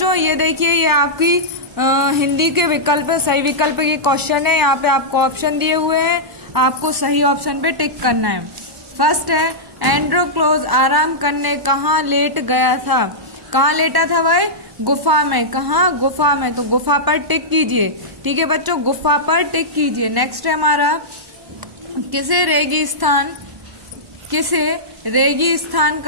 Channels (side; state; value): left; late; 1.0 ms